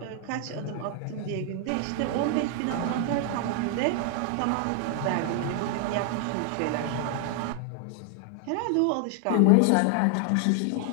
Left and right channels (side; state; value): both; different; correlation 0.00